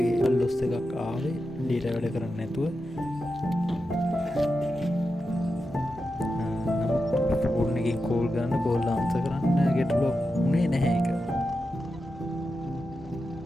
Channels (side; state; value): both; normal; correlation 0.89